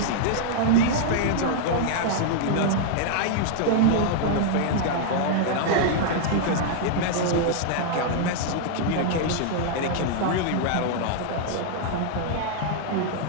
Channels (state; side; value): different; both; correlation -0.01